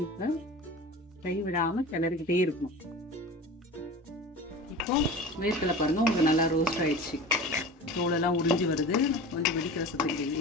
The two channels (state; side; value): normal; both; correlation 0.35